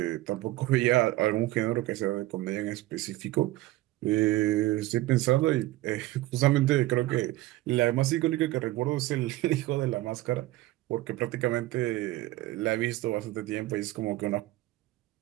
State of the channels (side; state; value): left; quieter; 17.4 dB